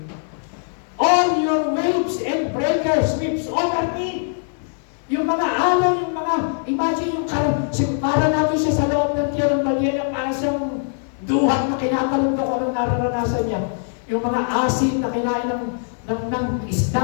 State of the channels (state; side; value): silent; right; digital silence